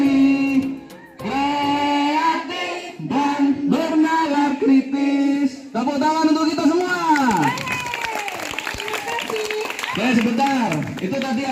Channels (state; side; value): identical; both; correlation 1.00